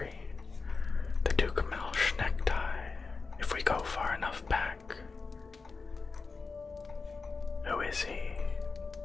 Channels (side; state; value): right; quieter; 4.4 dB